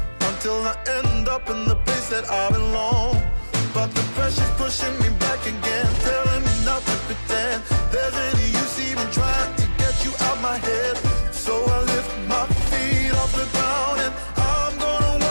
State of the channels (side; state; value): both; inverted; correlation -1.00